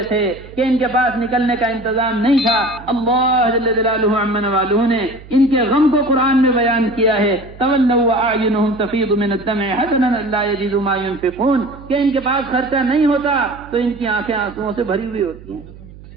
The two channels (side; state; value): right; noise; hum, 19 dB below the sound